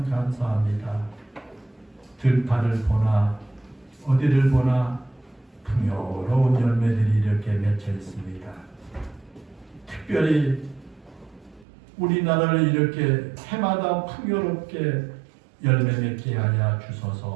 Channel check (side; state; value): left; drops out; at 11.7 s